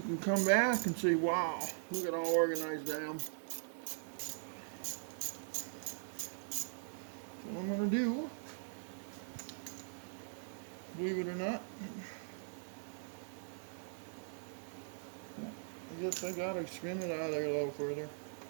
can come back and say, wow, look at how organized I am. So what I'm going to do, believe it or not, I guess I got to spin it out of there a little further.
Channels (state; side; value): silent; left; digital silence